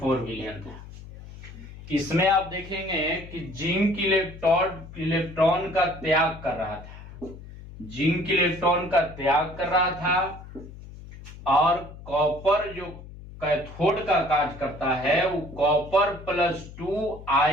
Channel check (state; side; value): noise; left; hum, 15 dB below the sound